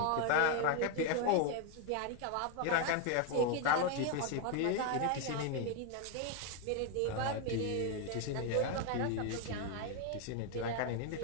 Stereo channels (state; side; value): different; both; correlation 0.01